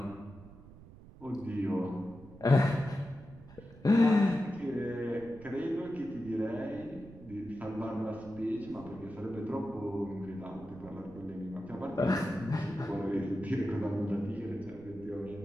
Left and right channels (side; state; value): right; noise; rumble, 19 dB below the sound